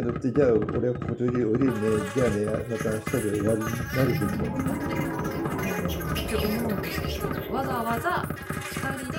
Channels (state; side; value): identical; both; correlation 1.00